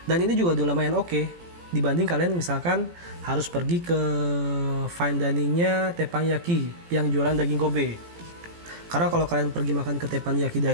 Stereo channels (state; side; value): late; left; 17 ms